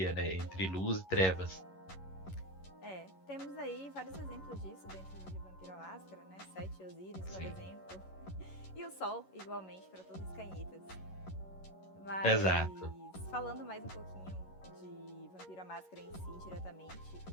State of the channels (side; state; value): right; late; 11 ms